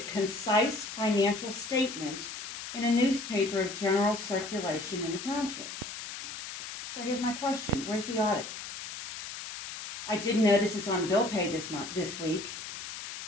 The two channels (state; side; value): noise; left; hiss, 9 dB below the sound